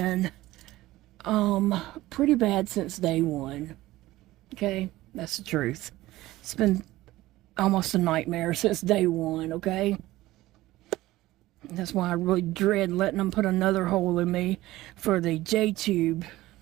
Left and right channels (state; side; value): quieter; left; 17.1 dB